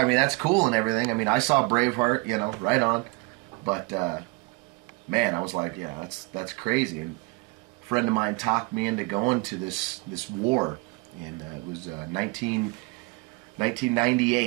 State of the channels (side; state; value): left; quieter; 27.2 dB